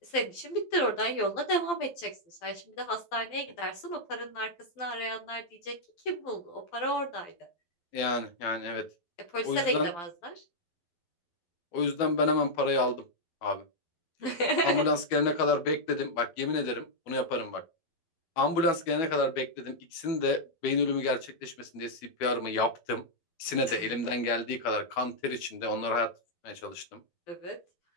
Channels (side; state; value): right; late; 12 ms